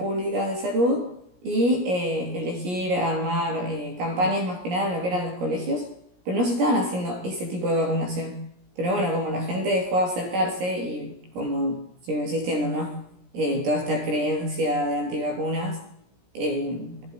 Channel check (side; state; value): left; late; 17 ms